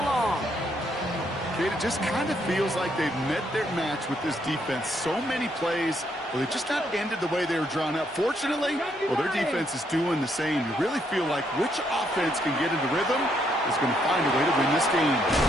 long. Kate, it just kind of feels like they've met their match with this defense. So many plays, well, they just not ended the way they were drawn up. Fortunately, well, their defense is doing the same. You really feel like which offense can get into rhythm is going to find a way to win this game.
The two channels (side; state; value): both; normal; correlation 0.74